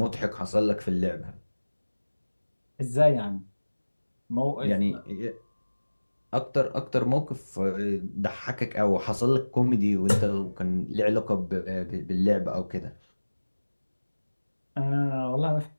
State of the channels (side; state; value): both; inverted; correlation -1.00